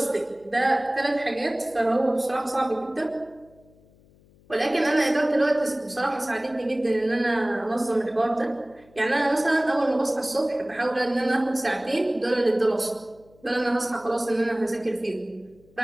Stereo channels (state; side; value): noise; left; hum, 29 dB below the sound